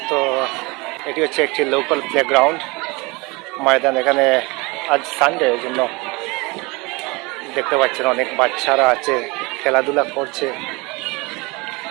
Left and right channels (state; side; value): quieter; left; 25.8 dB